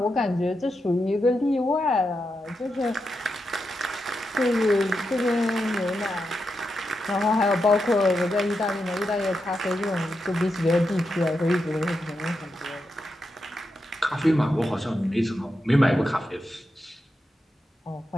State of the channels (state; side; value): normal; both; correlation 0.86